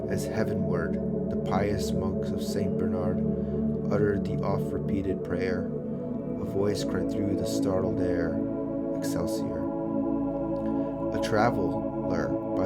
as heavenward, the pious monks of St. Bernard uttered the oft-repeated prayer. A voice cried through the startled air, Excelsior. A traveler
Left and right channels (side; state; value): both; identical; correlation 1.00